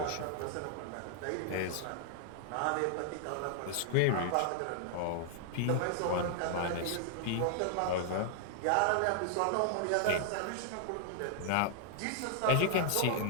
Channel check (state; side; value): different; both; correlation 0.00